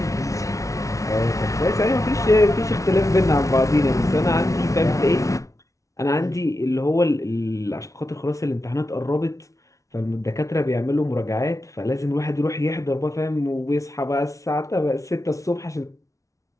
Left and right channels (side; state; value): right; late; 0.16 ms